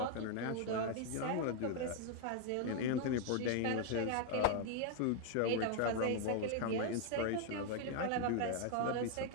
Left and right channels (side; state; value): both; different; correlation 0.01